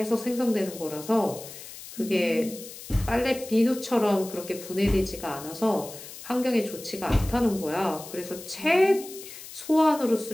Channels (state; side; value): noise; left; hiss, 14 dB below the sound